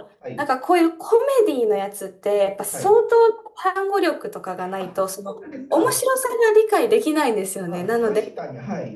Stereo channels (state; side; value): identical; both; correlation 1.00